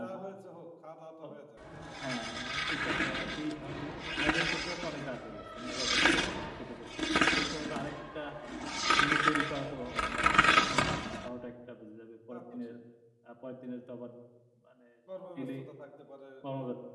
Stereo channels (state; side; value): identical; both; correlation 1.00